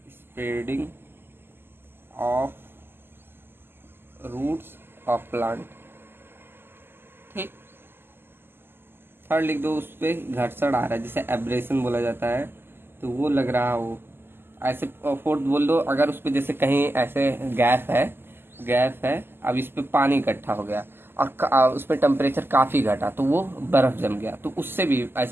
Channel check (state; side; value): late; left; 0.11 ms